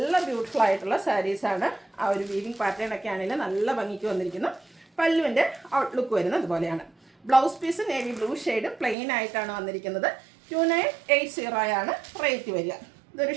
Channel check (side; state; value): left; drops out; at 9.0 s